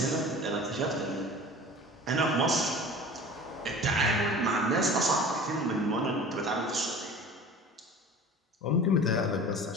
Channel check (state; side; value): normal; both; correlation 0.39